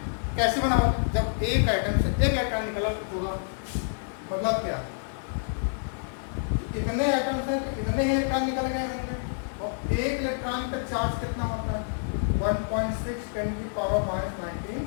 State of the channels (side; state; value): right; silent; digital silence